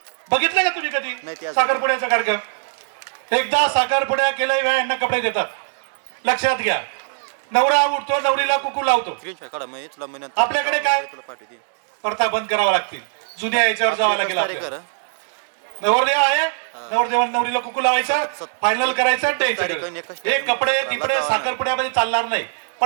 बघितलं का तुम्ही कधी नाही, ते साखरपुड्याचा कार्यक्रम? एकदा साखरपुड्या केल्या यांना कपडे देतात. लक्षात घ्या, नवरा उठतो, नवरीला कुकू लावतो. स्क्रीनशॉट काढा मग तुला महिन्यात आपल्याकडे काय? तुला पाठवते प्रथा बंद करावा लागतील. जुन्या याच्यावर जावं लागेल तारीख आपल्याला. करा नवरदेव आहे, नवरदेवाने नवरीला कुकू लावायचा, फायनल करायचं, द्यायचं. हे कपडे तिकडे साखरपुड्यामध्ये चालणार नाही.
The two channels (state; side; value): silent; left; digital silence